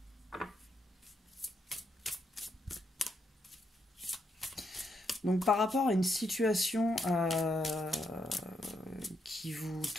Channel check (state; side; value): normal; both; correlation 0.78